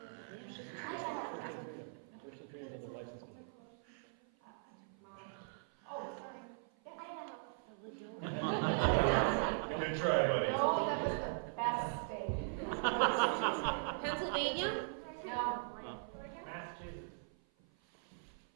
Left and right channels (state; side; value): silent; left; 51 dB below the other